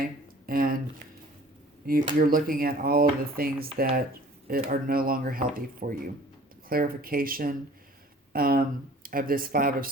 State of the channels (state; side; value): normal; both; correlation 0.49